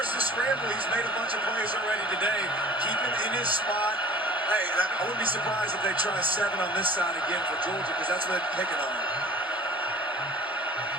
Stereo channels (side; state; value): both; normal; correlation 0.46